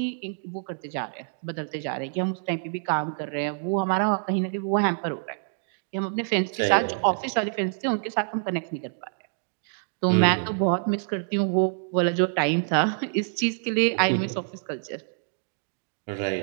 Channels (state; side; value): silent; left; digital silence